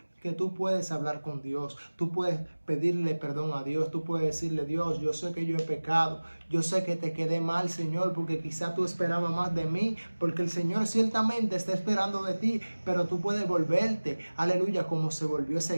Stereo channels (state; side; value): inverted; both; correlation -1.00